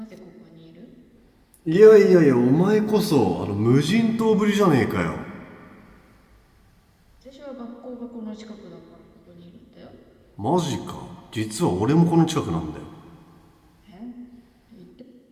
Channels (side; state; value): both; identical; correlation 1.00